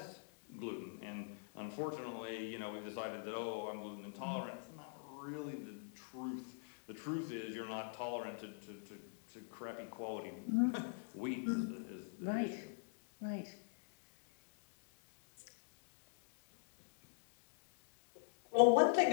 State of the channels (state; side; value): silent; right; digital silence